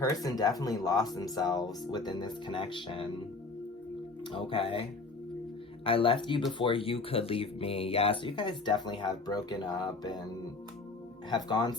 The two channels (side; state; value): right; quieter; 3.7 dB